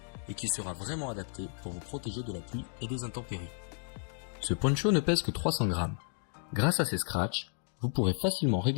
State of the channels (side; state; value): right; silent; digital silence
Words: et qui sera vraiment adapté pour vous protéger de la pluie et des intempéries. Ce poncho ne pèse que 300 grammes. Grâce à ses scratchs, vous pourrez facilement